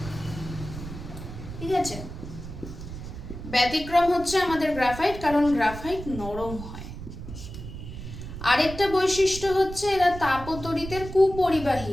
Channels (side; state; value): right; noise; rumble, 10 dB below the sound